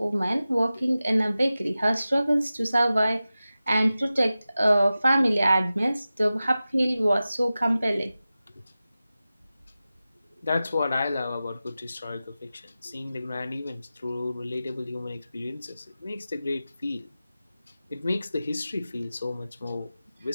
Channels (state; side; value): inverted; both; correlation -0.95